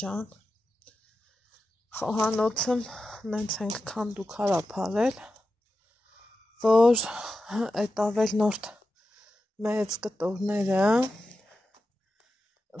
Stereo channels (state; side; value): normal; both; correlation 0.91